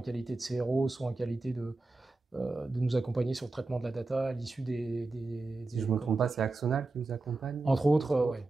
de CRO, soit en qualité de nous accompagner sur le traitement de la data à l'issue des Si je ne me trompe pas, c'est Axonal qui vous accompagne? Entre autres, oui,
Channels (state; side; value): quieter; left; 3.3 dB